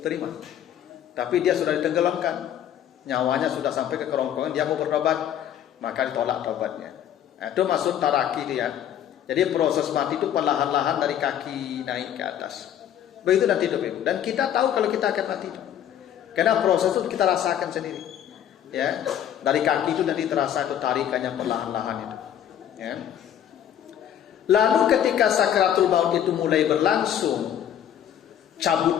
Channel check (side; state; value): right; quieter; 10.2 dB